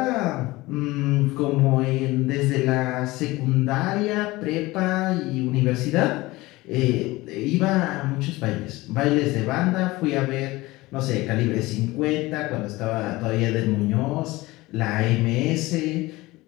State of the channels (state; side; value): quieter; right; 20.2 dB